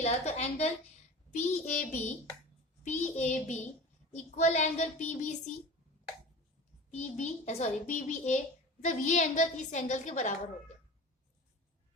तो angle P A B equal angle P B C, P B sorry P B A, मतलब ये एंगल इस एंगल के बराबर हो गया,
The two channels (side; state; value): both; normal; correlation 0.36